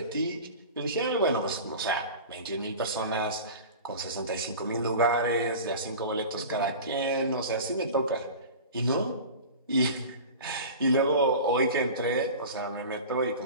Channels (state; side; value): inverted; both; correlation -0.35